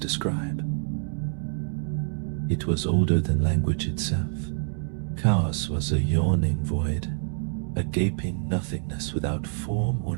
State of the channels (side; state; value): left; silent; 60 dB below the other